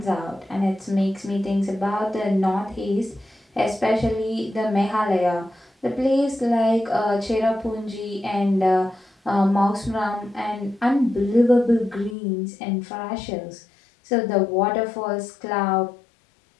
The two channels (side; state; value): right; drops out; at 12.2 s